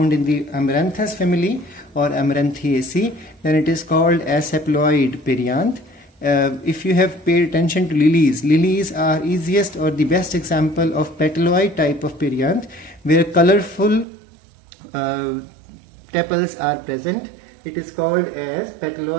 in the Amaranthus family or Amaranthaceae, then it is called as sepaloid perianth. If you have paid attention to lilies, lilies are easiest or the best example of petaloid type of perianth, where colorful tepals are present. It is called as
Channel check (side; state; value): left; drops out; at 14.1 s